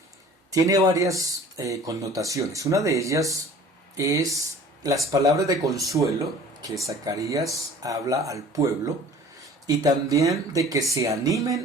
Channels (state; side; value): normal; both; correlation 0.47